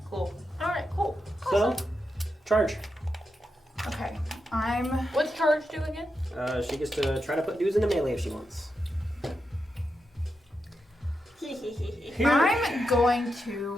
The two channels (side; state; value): both; normal; correlation 0.87